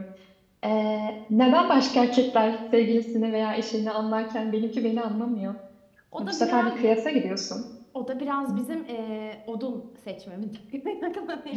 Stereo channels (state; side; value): identical; both; correlation 1.00